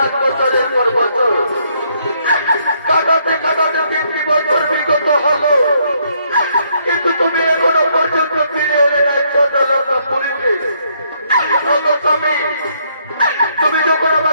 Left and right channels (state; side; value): inverted; both; correlation -0.71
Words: বছরের পর বছর কাটাতে কাটাতে 3টি বছর বিগত হলো, কিন্তু তুমি এখনো পর্যন্ত ফিরে এলে নাই ছোট লঙ্কা পুরীতে। স্বামী, তুমি যখন